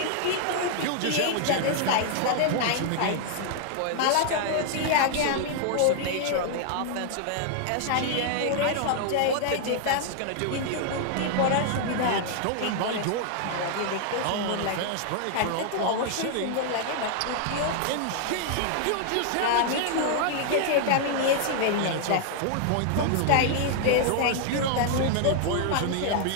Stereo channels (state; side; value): different; both; correlation 0.00